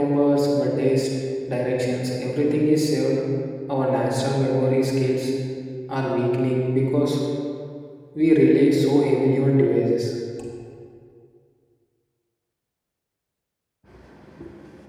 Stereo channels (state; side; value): identical; both; correlation 1.00